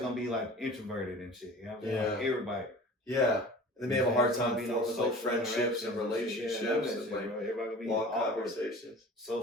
be like introverted and shit. You know what I'm saying? Yeah. Like, everybody. Yeah. They may have a hard time forming like friendships and relationships and like everybody gonna be long awkward, conversations,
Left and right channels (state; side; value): normal; both; correlation 0.41